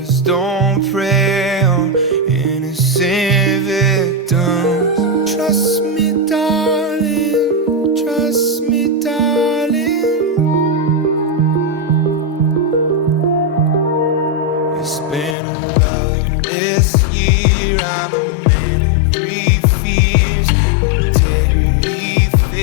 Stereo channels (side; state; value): right; drops out; at 15.4 s